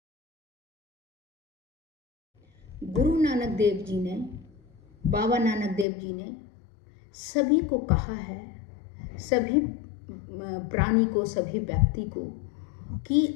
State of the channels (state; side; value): drops out; right; at 5.9 s